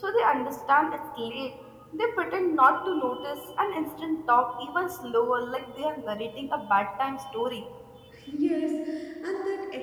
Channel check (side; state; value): both; identical; correlation 1.00